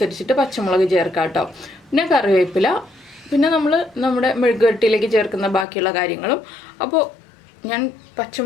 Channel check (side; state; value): right; drops out; at 5.7 s